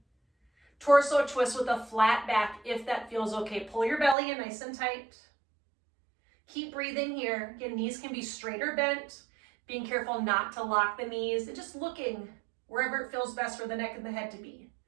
torso twist with a flat back if that feels okay. Pull your belly in nice and tight. Keep breathing here. Again, knees can be straight or bent. Being careful not to lock the knees and just looking wherever it feels best for the neck and the head to be.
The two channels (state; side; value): drops out; left; at 4.2 s